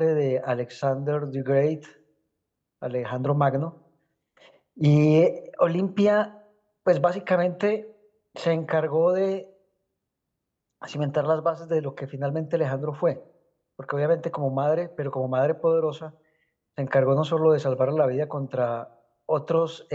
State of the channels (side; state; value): both; identical; correlation 1.00